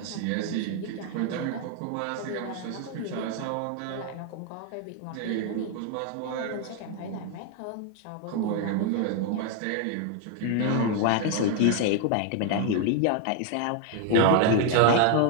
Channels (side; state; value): both; different; correlation 0.00